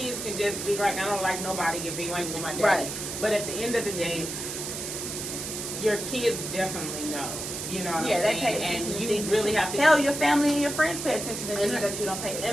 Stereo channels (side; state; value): right; noise; hiss, 6 dB below the sound